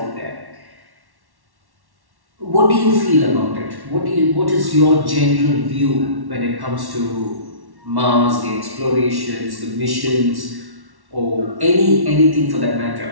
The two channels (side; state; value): left; late; 1.1 ms